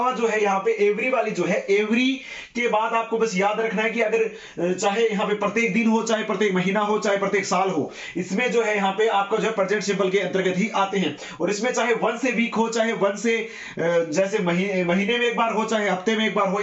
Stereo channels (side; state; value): both; identical; correlation 1.00